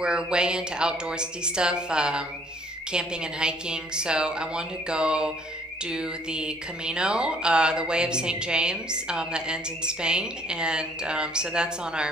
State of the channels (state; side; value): normal; both; correlation 0.61